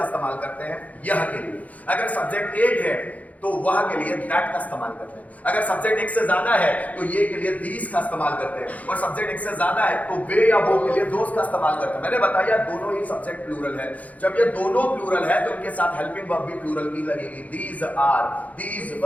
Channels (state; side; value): late; right; 0.072 ms